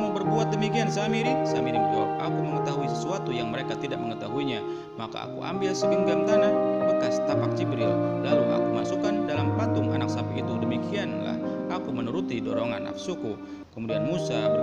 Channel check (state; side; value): identical; both; correlation 1.00